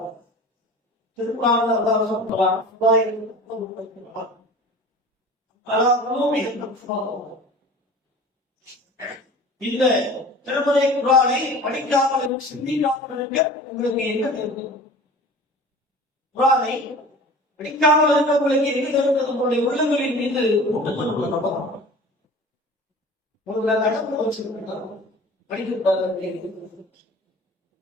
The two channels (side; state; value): both; normal; correlation 0.40